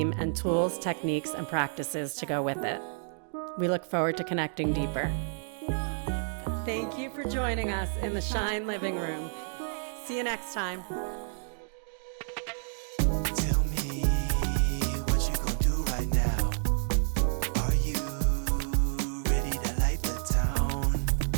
and tools, techniques, and practices to go with it. We look forward to connecting deeper. Thank you for joining us in the Shine Living Room. See you next time.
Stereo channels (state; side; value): silent; left; digital silence